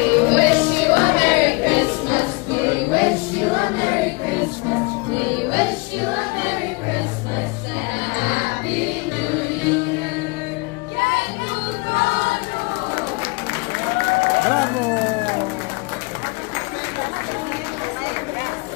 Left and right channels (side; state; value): right; quieter; 28.0 dB